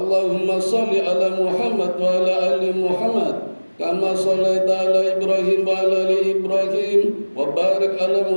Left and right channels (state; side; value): inverted; both; correlation -1.00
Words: shalli ala Muhammad wa ala ali Muhammad kama shallaita ala Ibrahim wa ala ali Ibrahim wa barik ala